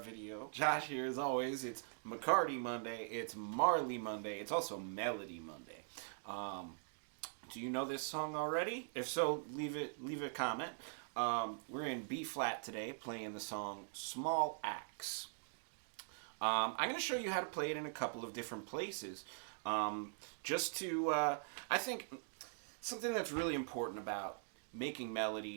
Josh here as always. It's McCarty Monday, it's Marley Monday, it's also Melody Monday. Do you know this song already? If so, leave a comment. We're in B flat today, playing the song Small Axe. I'm going to show you how to play it in a couple of different places. Just to, I think something that's really important about making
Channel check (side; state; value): left; silent; digital silence